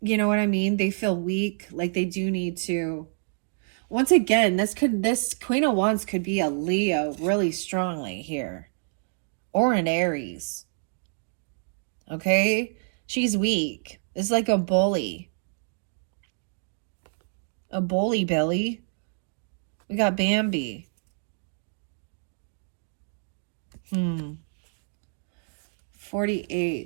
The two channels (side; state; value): left; silent; digital silence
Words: you know what I mean? They feel weak, like they do need to. Once again, this Queen of Wands could be a Leo really strongly here, or an Aries. Okay, she's weak. It's like a bully. A bully Billy. We got Bambi.